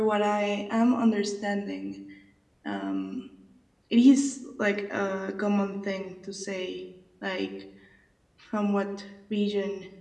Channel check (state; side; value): identical; both; correlation 1.00